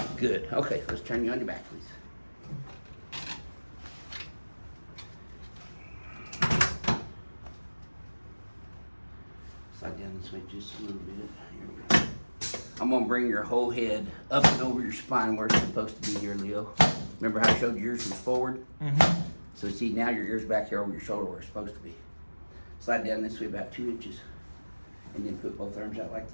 Good. Okay, let's turn you on your back, please. Slide down this way just a little bit. Here we go. I'm going to bring your whole head up and over your spine where it's supposed to be here, Leo. Remember how I showed yours was forward? So see, now your ear's back here over your shoulder where it's supposed to be. Slide down this way about 2 inches. And then put both arms out like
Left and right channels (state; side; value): inverted; both; correlation -1.00